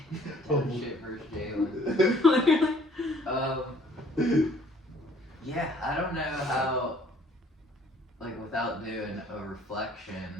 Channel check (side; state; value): both; normal; correlation 0.58